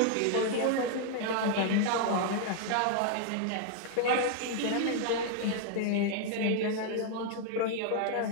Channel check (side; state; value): both; different; correlation 0.00